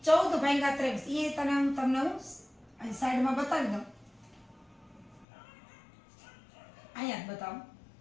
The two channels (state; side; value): drops out; right; at 5.2 s